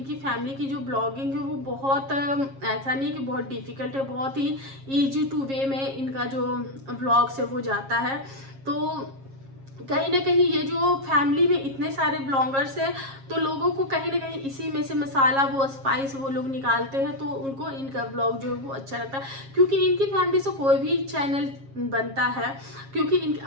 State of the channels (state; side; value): late; left; 7.4 ms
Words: फैमिली की जो ब्लॉगिंग है वो बहुत ऐसा नहीं कि बहुत डिफिकल्ट है, बहुत ही ईजी टू वे में इनका जो ब्लॉग्स है वो जाता है। तो कहीं ना कहीं ये जो फैमिली में इतने सारे ब्लॉगर्स हैं तो लोगों को कहीं ना कहीं इसी में से मसाला, वो स्पाइस वो लोग निकालते हैं, तो उनको इनका ब्लॉग जो है वो अच्छा लगता है। क्योंकि इनकी फैमिली से कोई भी चैनल बनता है, क्योंकि